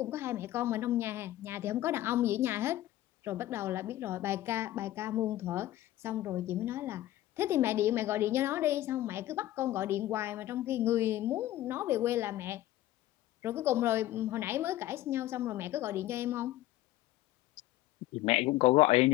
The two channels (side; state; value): right; quieter; 14.9 dB